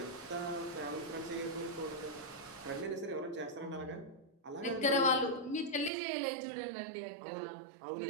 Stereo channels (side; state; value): left; drops out; at 5.9 s